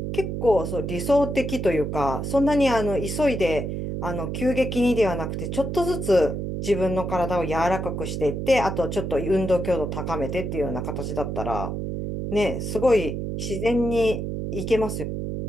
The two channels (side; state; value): right; noise; hum, 3 dB below the sound